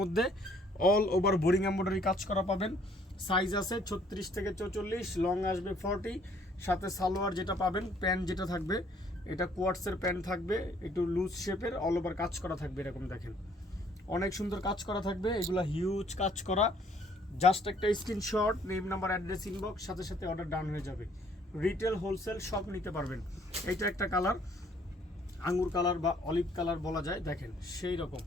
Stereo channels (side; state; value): both; normal; correlation 0.62